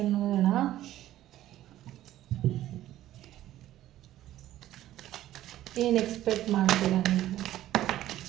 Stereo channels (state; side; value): quieter; left; 13.6 dB